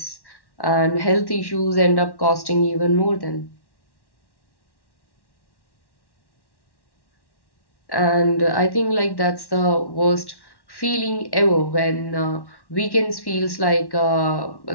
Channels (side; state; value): right; late; 1.1 ms